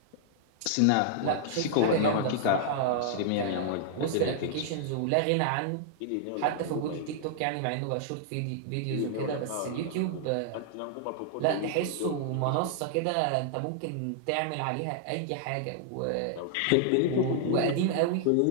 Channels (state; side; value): different; both; correlation -0.01